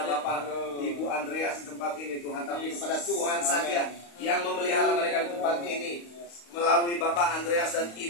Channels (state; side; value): late; right; 35 ms